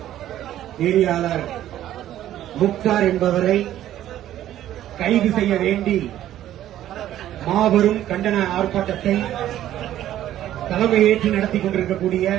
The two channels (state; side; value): quieter; left; 12.5 dB